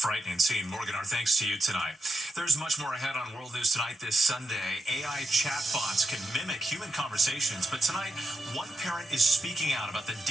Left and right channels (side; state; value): both; normal; correlation 0.85